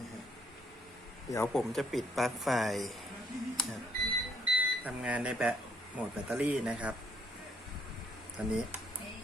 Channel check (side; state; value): both; normal; correlation 0.68